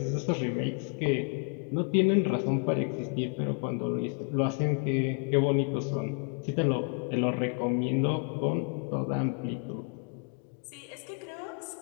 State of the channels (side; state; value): right; quieter; 36.4 dB